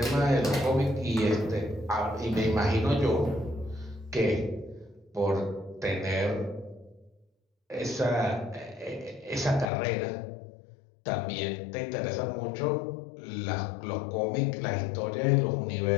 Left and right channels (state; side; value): drops out; right; at 9.7 s